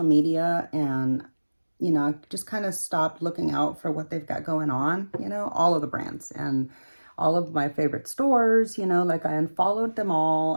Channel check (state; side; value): inverted; both; correlation -1.00